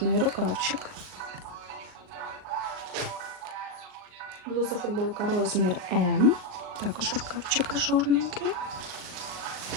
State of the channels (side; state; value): left; late; 39 ms